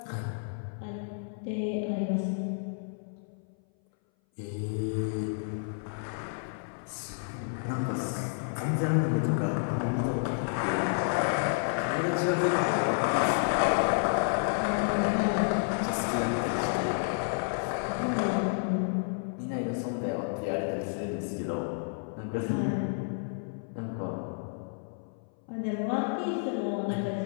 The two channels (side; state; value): right; silent; 57 dB below the other